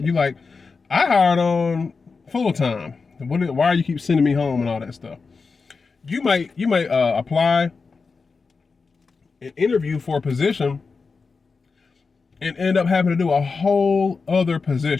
You like, I hired on full-time. Why are you keep sending me home and all that stuff? You might apply and interview for a position and end up having to do a whole other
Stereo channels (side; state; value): right; quieter; 4.6 dB